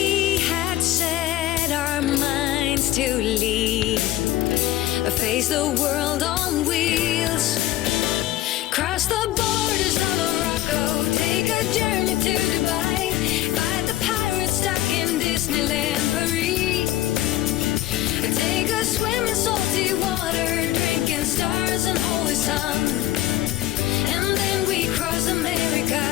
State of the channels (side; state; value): right; quieter; 14.7 dB